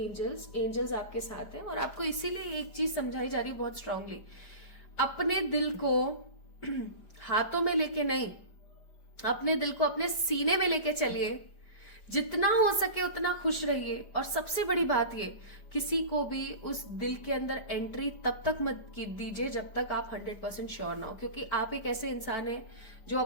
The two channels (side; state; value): right; late; 5.0 ms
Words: Angels आपके साथ है और आपको इसीलिए एक चीज समझाई जा रही है बहुत स्ट्रांगली, अपने दिल को हाथों में लेके नहीं, अपने दिल को अपने सीने में लेके चलिए, जितना हो सके उतना खुश रहिए। और सबसे बड़ी बात ये, किसी को भी उस दिल के अंदर एंट्री तब तक मत दीजिए जब तक आप 100% श्योर ना हो, क्योंकि आप एक ऐसे इंसान हैं जो